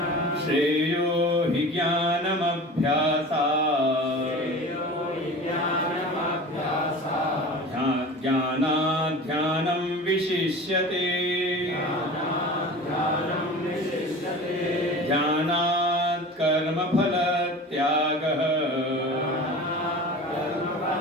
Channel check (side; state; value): both; normal; correlation 0.36